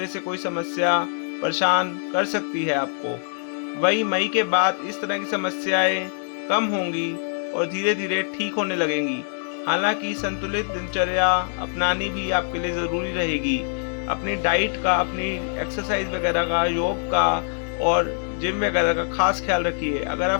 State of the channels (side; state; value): right; silent; digital silence